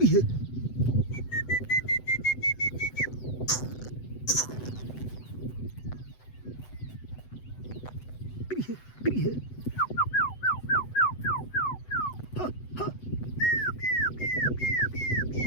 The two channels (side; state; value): right; late; 8.0 ms